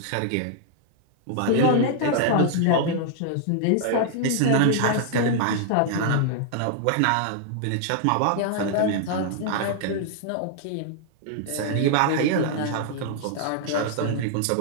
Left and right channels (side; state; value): both; different; correlation -0.01